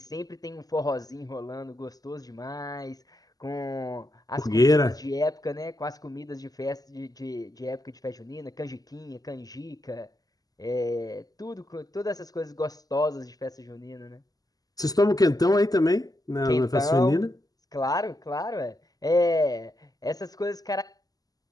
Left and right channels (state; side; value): late; right; 0.18 ms